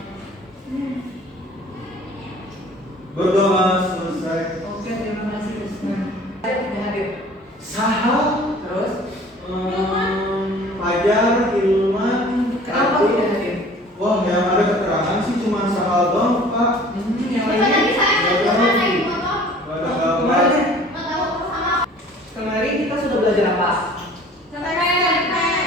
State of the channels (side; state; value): both; normal; correlation 0.49